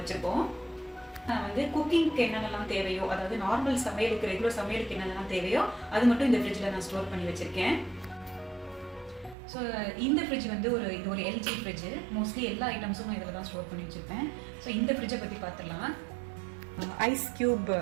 நான் வந்து குக்கிங்க்கு என்னென்னலாம் தேவையோ, அதாவது நார்மல் சமையலுக்கு ரெகுலர் சமையலுக்கு என்னென்னலாம் தேவையோ அது மட்டும் இந்த ஃப்ரிட்ஜில் நான் ஸ்டோர் பண்ணி வச்சுருக்கேன். ஸோ இந்த ஃப்ரிட்ஜ் வந்து இது ஒரு எல்ஜி ஃப்ரிட்ஜு. மோஸ்ட்லி எல்லா ஐட்டம்ஸும் நான் இதில் தான் ஸ்டோர் பண்ணி வச்சுருப்பேன். ஸோ இந்த ஃப்ரிட்ஜை பற்றி பார்த்துடலாம். ஐஸ் க்யூப்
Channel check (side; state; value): left; drops out; at 9.3 s